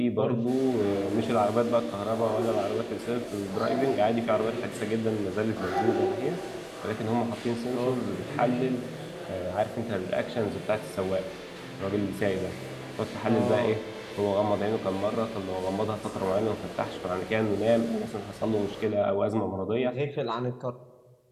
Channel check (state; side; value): identical; both; correlation 1.00